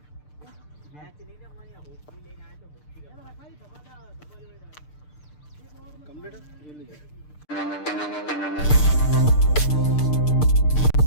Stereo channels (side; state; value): right; late; 6.7 ms